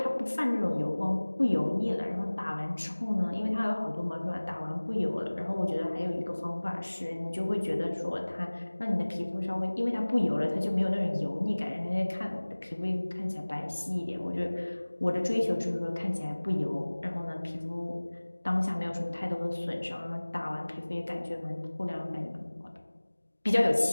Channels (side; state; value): both; inverted; correlation -1.00